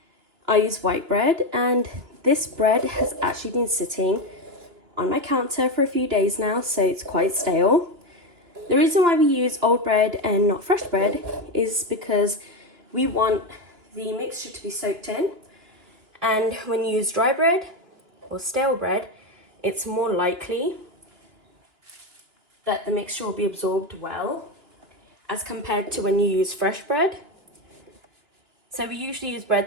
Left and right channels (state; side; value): late; left; 2.9 ms